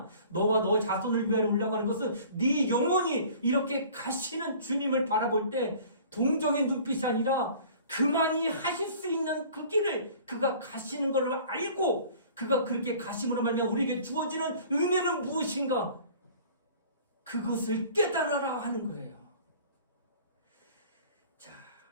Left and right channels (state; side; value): inverted; both; correlation -0.48